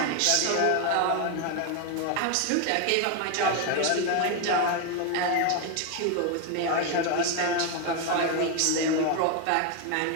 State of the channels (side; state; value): both; different; correlation 0.01